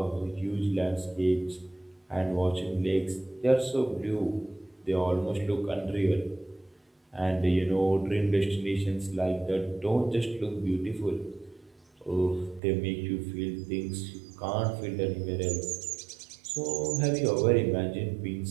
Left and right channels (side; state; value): left; drops out; at 12.6 s